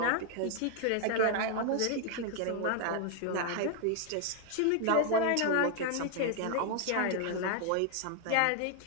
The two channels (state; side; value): different; both; correlation 0.00